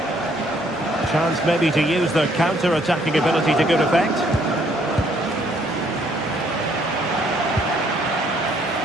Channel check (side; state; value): both; normal; correlation 0.66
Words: Chance maybe to use their counter-attacking ability to good effect.